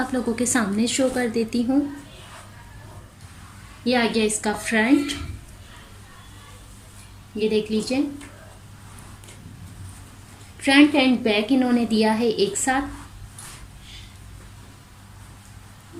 लोगों के सामने शो कर देती हूँ। ये आ गया इसका फ्रंट, ये देख लीजिए। फ्रंट एंड बैक इन्होंने दिया है एक साथ।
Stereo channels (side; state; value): both; identical; correlation 1.00